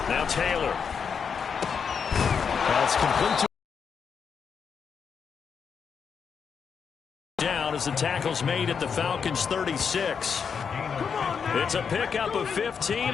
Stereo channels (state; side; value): quieter; right; 6.5 dB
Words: 8. Now Taylor. That's complete to down as the tackle's made at the Falcons 36. It's a pickup of